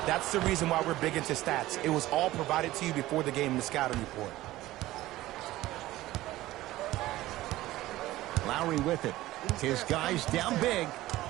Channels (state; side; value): quieter; left; 16.5 dB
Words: That's the reason why we're big into stats. It was all provided to you before the game in the scouting report. Lowry with it. His guys down big.